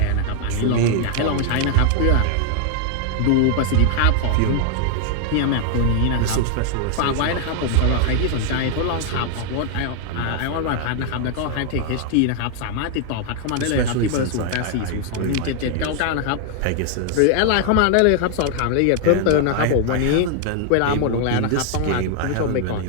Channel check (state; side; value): different; both; correlation 0.00